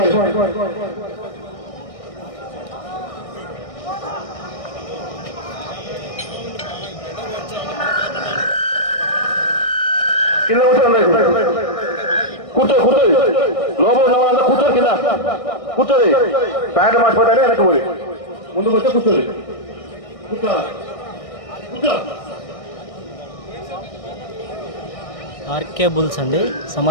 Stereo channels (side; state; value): right; late; 1.6 ms